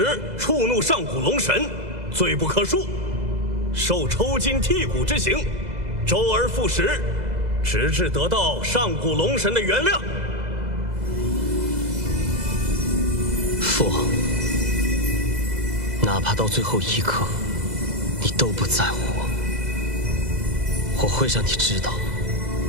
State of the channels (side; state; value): left; late; 2.0 ms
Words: 触怒上古龙神，罪不可恕，受抽筋剔骨之刑，周而复始，直至得到上古龙神的原谅。父王，哪怕到最后一刻，你都不在乎我会让你知道，